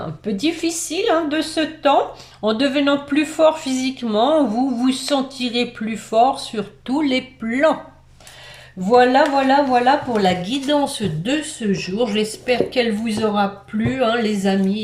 un peu difficile hein, de ce temps. En devenant plus fort physiquement, vous vous sentirez plus fort sur tous les plans. Voilà, voilà, voilà pour la guidance de ce jour. J'espère qu'elle vous aura plu, hein, les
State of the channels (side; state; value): both; identical; correlation 1.00